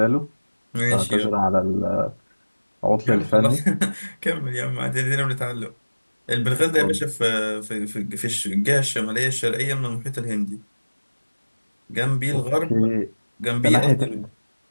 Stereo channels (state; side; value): inverted; both; correlation -1.00